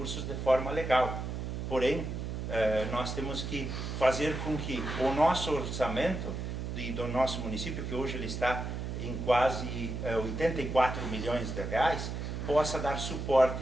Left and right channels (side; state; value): right; noise; hum, 4 dB below the sound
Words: de forma legal. Porém, nós temos que fazer com que o nosso orçamento do nosso município, que hoje ele está em quase 84 milhões de reais, possa dar